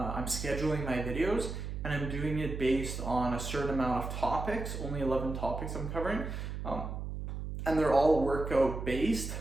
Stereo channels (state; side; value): noise; right; hum, 5 dB below the sound